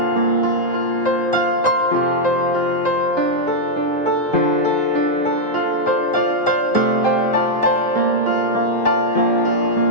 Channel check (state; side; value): normal; both; correlation -0.02